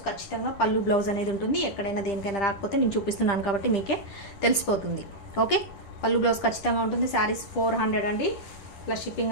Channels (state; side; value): late; right; 10 ms